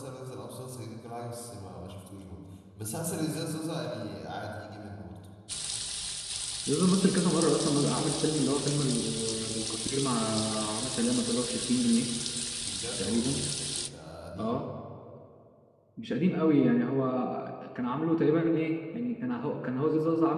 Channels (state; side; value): identical; both; correlation 1.00